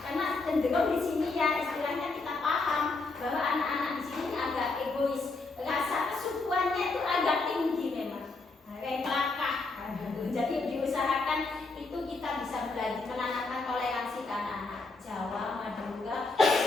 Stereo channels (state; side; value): quieter; right; 3.6 dB